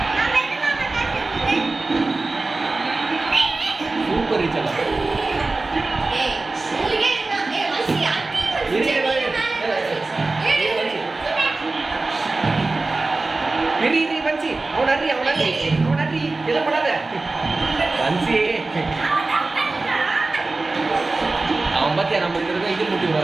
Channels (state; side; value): quieter; left; 3.4 dB